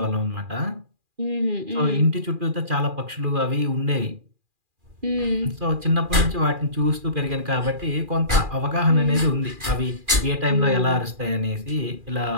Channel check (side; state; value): left; late; 2.4 ms